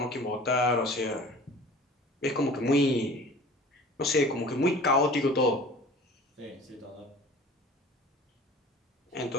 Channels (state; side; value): normal; both; correlation 0.44